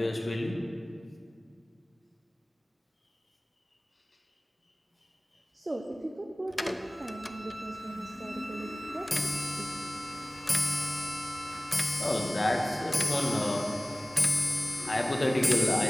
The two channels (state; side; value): normal; both; correlation 0.98